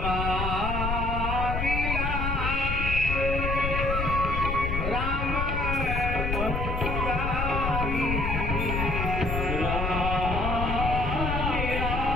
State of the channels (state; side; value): noise; left; rumble, 1 dB below the sound